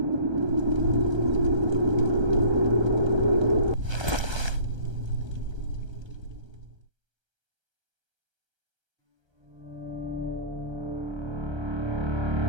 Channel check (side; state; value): left; late; 1.3 ms